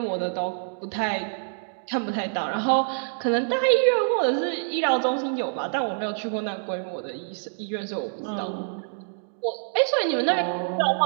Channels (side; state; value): left; silent; digital silence